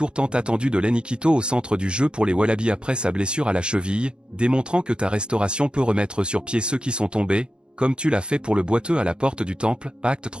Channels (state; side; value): late; left; 0.051 ms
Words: tant attendu de Lenny Quito au centre du jeu pour les Wallabies après sa blessure à la cheville, démontrant que ta restauration peut remettre sur pied ceux qui sont tombés, comme tu l'as fait pour le boiteux à la porte du temple, Acte